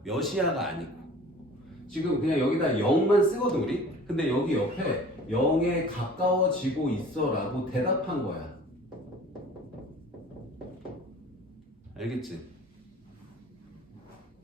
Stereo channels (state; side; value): normal; both; correlation 0.46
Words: 몇이야가 아니고. 지금 그냥 여기다 0만 쓰거든 우리. 근데 여기 옆에 0에 가까워지고 있어라고 대답한 거야. 알겠지?